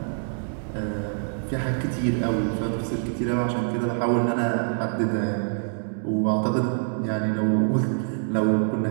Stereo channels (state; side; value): silent; left; 61 dB below the other